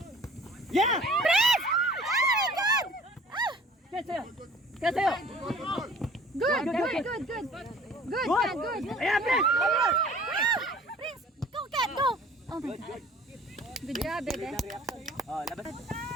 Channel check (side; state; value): both; normal; correlation 0.50